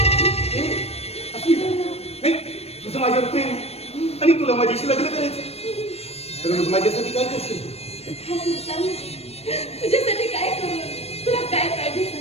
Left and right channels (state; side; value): late; right; 0.30 ms